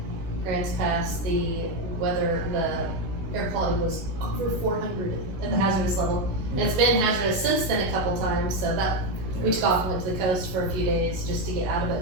Grants Pass, the weather, the air quality was over 400 at the hazardous level. And it's been hazardous since then a couple times, so that we took off and went to the coast for a few days just to get out of it.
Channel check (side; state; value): left; late; 16 ms